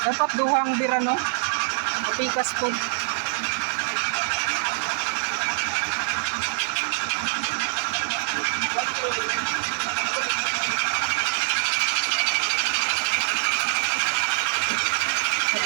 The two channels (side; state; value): left; silent; 62 dB below the other